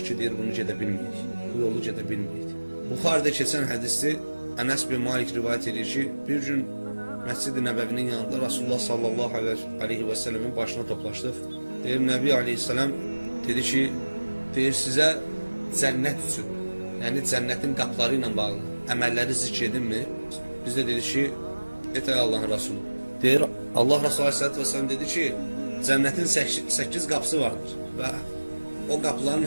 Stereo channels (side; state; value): both; inverted; correlation -1.00